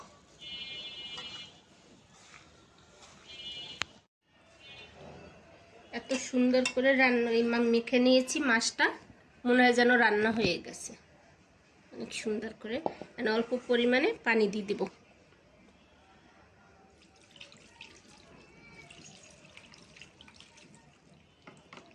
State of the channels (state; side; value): identical; both; correlation 1.00